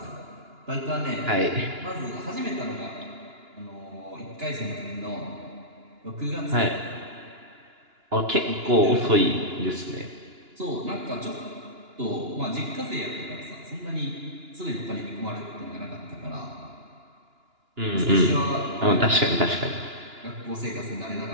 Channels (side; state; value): left; late; 2.9 ms